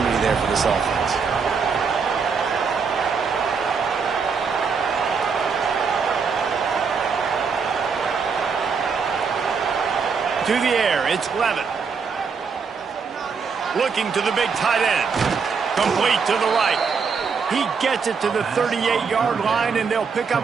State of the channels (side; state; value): left; quieter; 5.6 dB